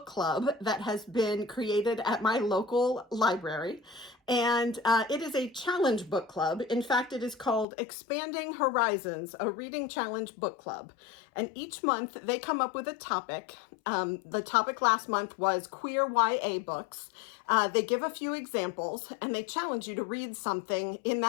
club that has been created at my local library. And it is a challenge book club. In fact, it is called Expanding Horizons, a reading challenge book club. And each month they come up with a topic. The topic last month was queer YA books. They give a few examples and they challenge you to read something in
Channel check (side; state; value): right; drops out; at 7.7 s